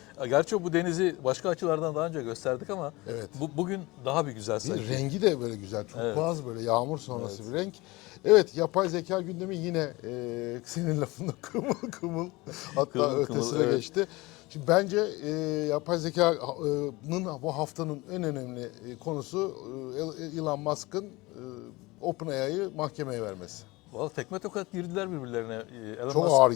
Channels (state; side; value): quieter; right; 22.0 dB